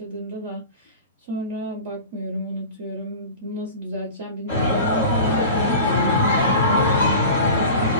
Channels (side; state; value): both; inverted; correlation -0.35